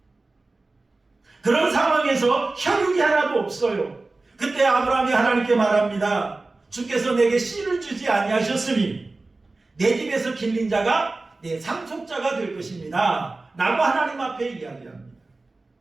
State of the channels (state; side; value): quieter; left; 3.3 dB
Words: 그런 상황에서 혈육이 하나도 없어요. 그때 아브라함이 하나님께 말합니다. 주께서 내게 씨를 주지 아니하셨으니 내 집에서 길린 자가 내 상속자가 될 것입니다. 라고 하나님 앞에 이야기합니다.